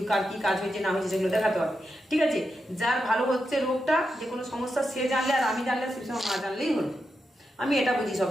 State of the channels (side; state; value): both; normal; correlation 0.87